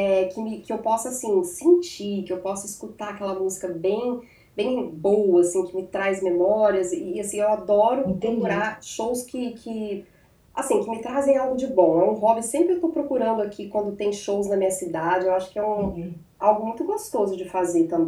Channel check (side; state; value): both; identical; correlation 1.00